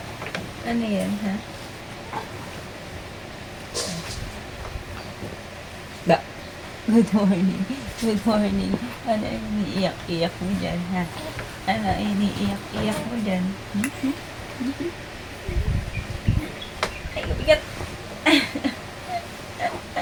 Ano yan, ha? Ba. Good morning. Good morning. Ano iniiyak-iyak mo dyan, ha? Ano iniiyak-iyak mo dyan? Ay, bigat.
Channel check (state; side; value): identical; both; correlation 1.00